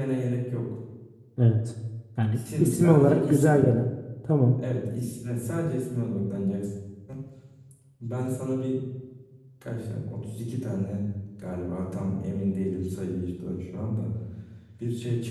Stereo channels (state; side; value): identical; both; correlation 1.00